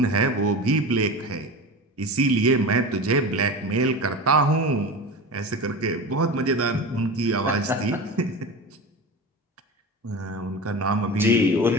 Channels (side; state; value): both; normal; correlation 0.29